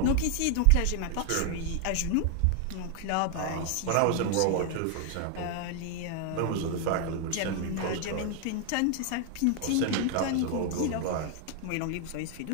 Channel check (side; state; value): both; different; correlation 0.00